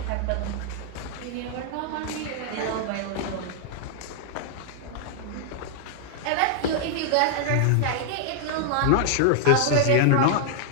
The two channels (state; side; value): different; both; correlation 0.00